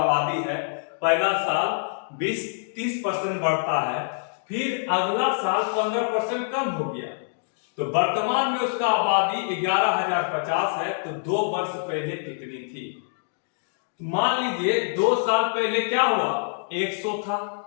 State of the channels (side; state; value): right; silent; digital silence